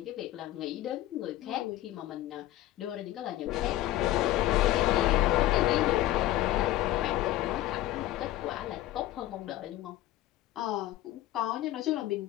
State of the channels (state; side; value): quieter; right; 15.2 dB